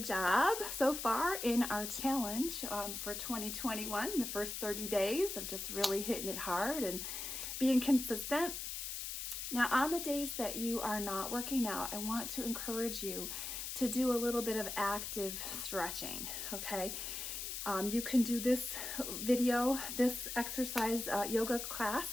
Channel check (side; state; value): left; noise; hiss, 5 dB below the sound